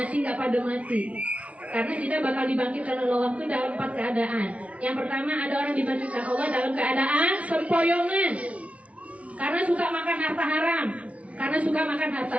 mati. Karena kita bakal dibangkitkan oleh Allah itu dalam 4 keadaan. Yang pertama ada orang dibangkitkan Allah dalam keadaan sempoyongan. Karena suka makan harta haram, karena suka makan harta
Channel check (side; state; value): left; late; 0.065 ms